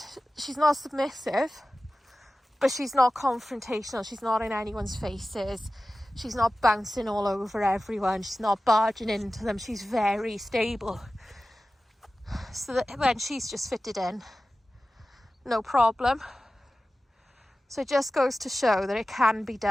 she's not submissive, but she's not confrontational. She's not in anyone's faces. She's not bouncing all over everyone. She's not barging into them. She's very stable. So that when she's just fitted in, no problem. So it just goes to show that it can be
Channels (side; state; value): both; normal; correlation 0.95